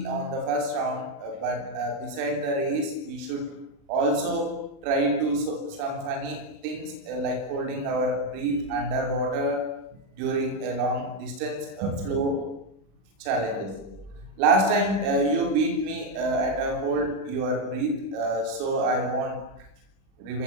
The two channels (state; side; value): late; left; 36 ms